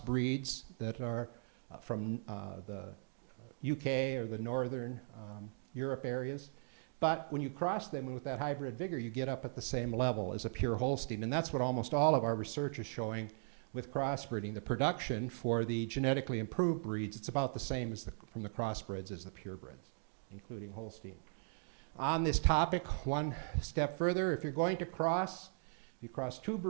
that are from the UK or the Northern Europe areas. But when you cross them with that hybrid vigor, you get up at the same level as a pure Holstein. And that's what almost all of our research is showing with crossbreeding. The production for the genetically improved breeds, it's about the same as from the crossbreds as the purebreds, including Holstein. On this topic, one step further, if you're going to cross, you cross two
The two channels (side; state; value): left; silent; digital silence